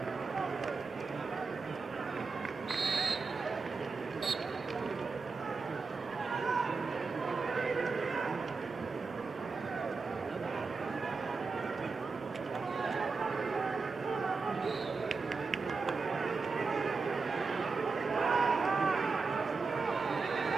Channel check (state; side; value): quieter; left; 4.4 dB